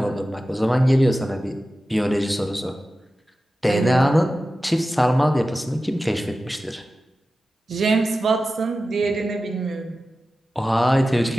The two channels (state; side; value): normal; both; correlation 0.94